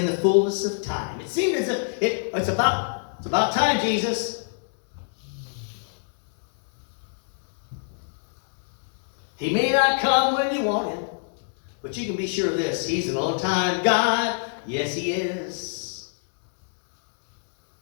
the fullness of time. It seemed as if it's about time, Jesus. He may not come when you want him, but you can be sure of this. He's an on-time God. Yes, he is.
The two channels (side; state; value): right; silent; 62 dB below the other